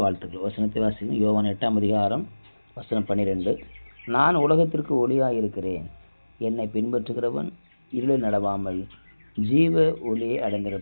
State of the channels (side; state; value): both; inverted; correlation -1.00